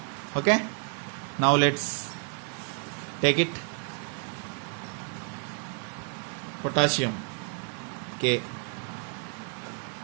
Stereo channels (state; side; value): quieter; left; 39.5 dB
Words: Okay. Now let's take it. Potassium K,